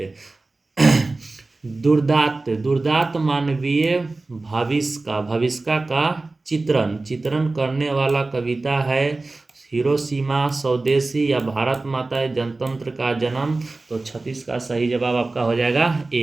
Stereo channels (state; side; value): quieter; left; 3.3 dB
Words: दुर्दांत, दुर्दांत मानवीय भविष्य का चित्रण चित्रण करने वाला कविता है हिरोशिमा, स्वदेशी या भारत माता जनतंत्र का जन्म। तो 36 का सही जवाब आपका हो जाएगा